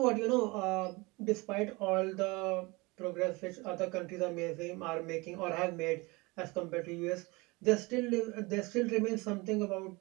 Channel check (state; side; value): quieter; left; 24.8 dB